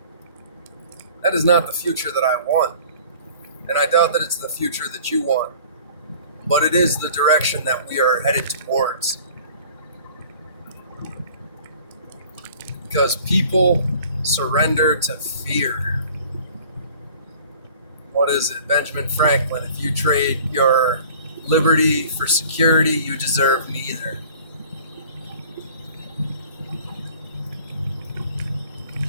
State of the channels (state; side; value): inverted; both; correlation -0.48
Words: That is not the future that I want. And I doubt that it's the future that you want. But it is the direction that we are headed towards. Because people surrender to fear. What is it? Benjamin Franklin. If you trade your liberty for security, you deserve neither.